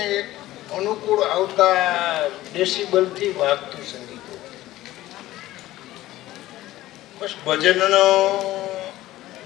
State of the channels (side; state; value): right; quieter; 15.9 dB